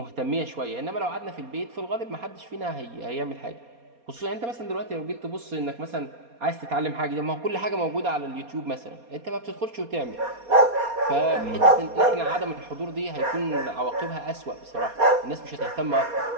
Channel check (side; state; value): left; late; 4.2 ms